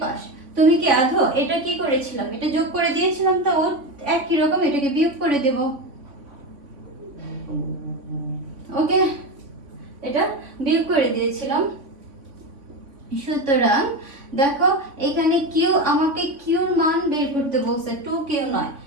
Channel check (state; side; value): late; left; 3.5 ms